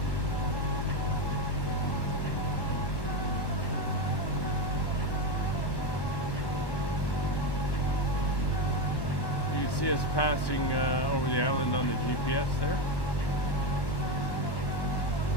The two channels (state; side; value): late; right; 1.1 ms